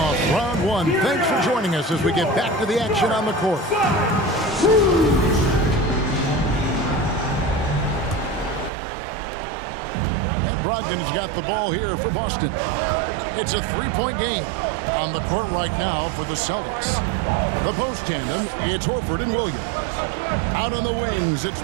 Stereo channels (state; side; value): drops out; left; at 8.7 s